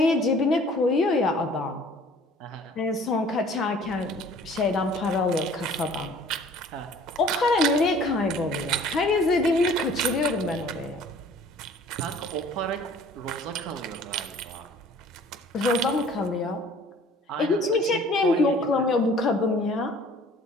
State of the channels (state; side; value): normal; both; correlation 0.51